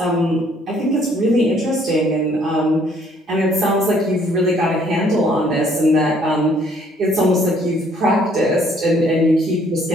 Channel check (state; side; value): normal; both; correlation 0.63